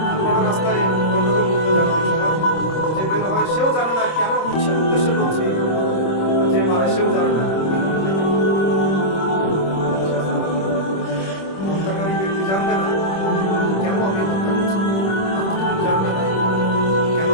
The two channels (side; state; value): right; late; 26 ms